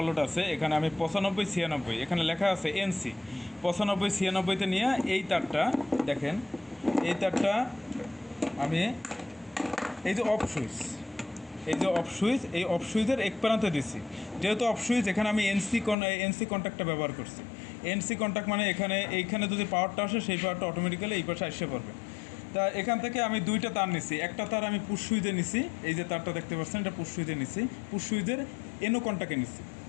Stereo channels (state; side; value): drops out; right; at 16.0 s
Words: আছে এখানে আমি 95 96 এখানে লেখা আছে এনসি 95 96তে নিয়ে এই তারটা দেখেন, এই তারটা আমি এই যে অফ সুইচ, এই যে অফ সুইচ, এই অফ সুইচের এক প্রান্তে দিছি। যেহেতু অফ সুইচ এখানে আমি এনসি কন্ট্যাক্টটা ব্যবহার করছি। এনসি কন্ট্যাক্ট মানে এইখানে যদি পাওয়ারটা আসে সেই পাওয়ারটা অটোমেটিক্যালি এই পাশে এসে পড়বে। তা এখান থেকে আমি দুইটা তার নিছি, একটা তার আমি পুশ সুইচে নিছি, এই যে তারটা দেখতে পাচ্ছেন এটা পুশ সুইচে নিছি, পুশ সুইচের এনো কন্ট্যাক্টে নিছি,